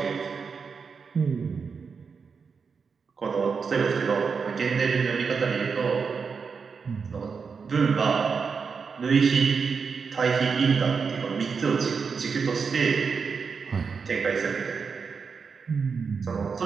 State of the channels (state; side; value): quieter; left; 5.5 dB